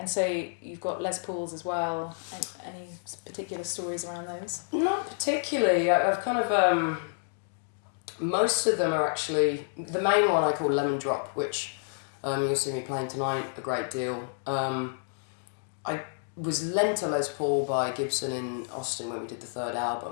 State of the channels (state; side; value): silent; right; digital silence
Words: so you've got Les Pauls as well. Any particular stories around those? Not particularly. I've kind of... most of them are actually... The main one I call Lemon Drop, which you'll see me playing tonight a great deal. I was lent a Les Paul by Gibson in Austin when we did the third